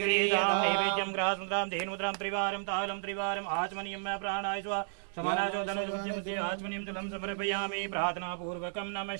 नैवेद्यं ग्रासमुद्रां धेनुद्रां त्रिवारं तालं त्रिवारम् आचमनीयं प्राणाय स्वा समानाचो धनुर्मध्ये आचमनीयं जलं समर्पयामि प्रार्थनापूर्वकं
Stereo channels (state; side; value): silent; left; digital silence